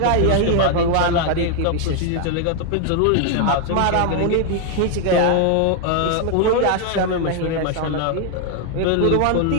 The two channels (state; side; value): different; both; correlation 0.00